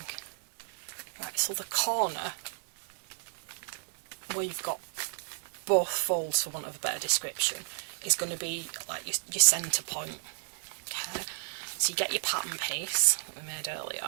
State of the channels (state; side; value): silent; left; 56 dB below the other